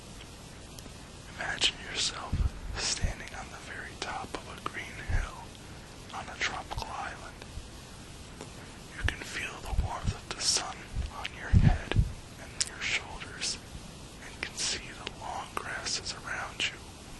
Imagine yourself standing on the very top of a green hill on a tropical island. You can feel the warmth of the sun on your head and your shoulders, and can see the long grasses around you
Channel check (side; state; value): both; identical; correlation 1.00